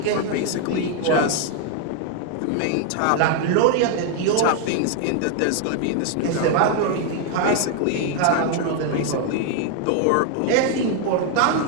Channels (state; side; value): different; both; correlation 0.00